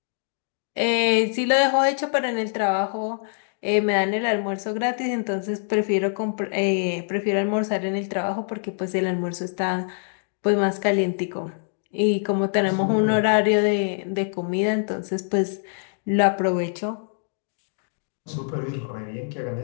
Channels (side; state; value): right; silent; digital silence